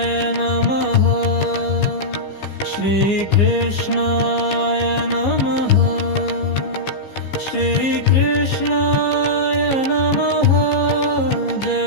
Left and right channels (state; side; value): late; right; 15 ms